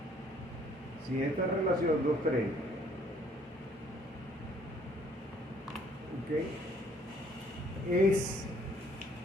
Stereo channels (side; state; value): both; normal; correlation 0.61